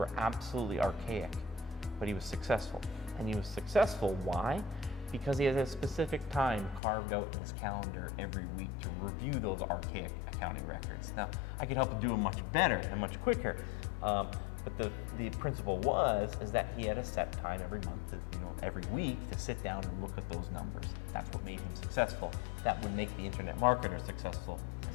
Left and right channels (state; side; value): drops out; right; at 6.8 s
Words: absolutely archaic, but he was successful. And he was successful, why? Because he has a specific time carved out in his calendar every week to review those archaic accounting records. Now, I could help him do it much better and much quicker, but the principle is that he had a set time every month, every week to sit down and look at those numbers. That's what made him successful. That would make the internet marketer successful